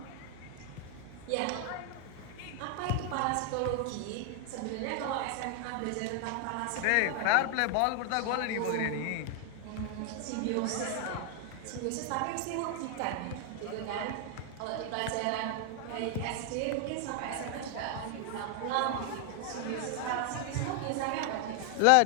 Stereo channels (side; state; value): both; different; correlation 0.00